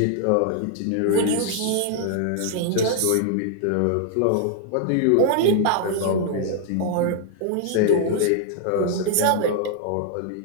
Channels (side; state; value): both; different; correlation -0.01